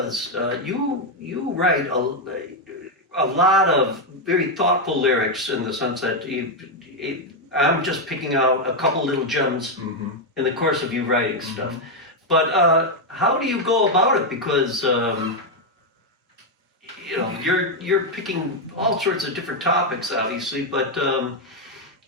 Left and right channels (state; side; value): normal; both; correlation 0.03